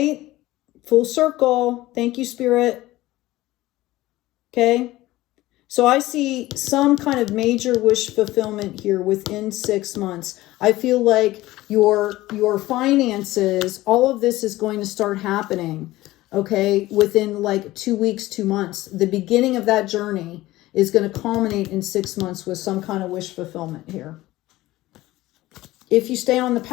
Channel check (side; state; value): right; quieter; 17.4 dB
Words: Full circle. Thank you, Spirit. Okay. So I see some kind of major wish fulfillment here within 6 months. I feel like your finances, all of this is going to start happening, okay, within like 2 weeks, 2 months. The beginning of that journey is going to culminate in 6 months with some kind of wish fulfillment here. If you stay on the